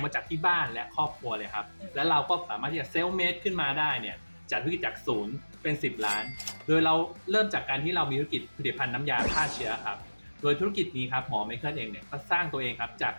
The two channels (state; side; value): inverted; both; correlation -1.00